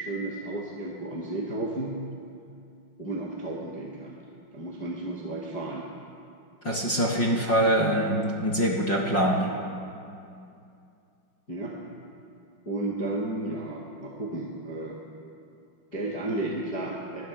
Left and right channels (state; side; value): late; right; 5.5 ms